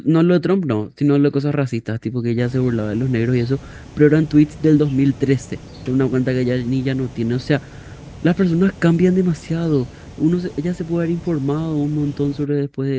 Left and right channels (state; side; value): identical; both; correlation 1.00